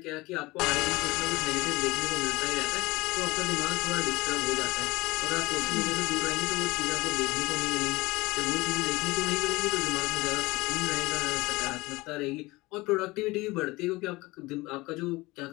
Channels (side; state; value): right; quieter; 21.7 dB